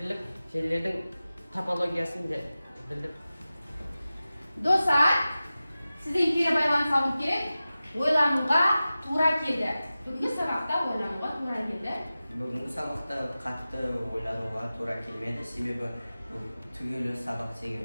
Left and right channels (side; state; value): both; inverted; correlation -0.95